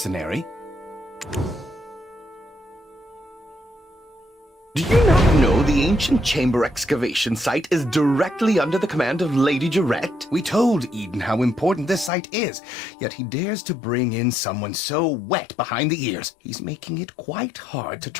Do you not know the ancient chamber excavation site is directly under the command of Lady Jarette? We told Eden how important this site is, yet he dares to bring in someone so wet behind the ears. He's making it quite hard to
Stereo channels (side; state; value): right; drops out; at 12.1 s